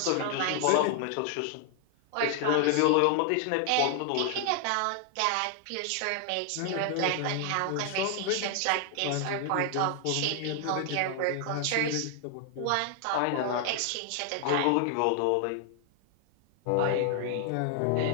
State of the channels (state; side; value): different; both; correlation 0.00